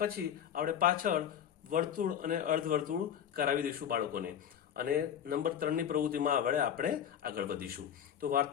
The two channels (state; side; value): quieter; right; 9.2 dB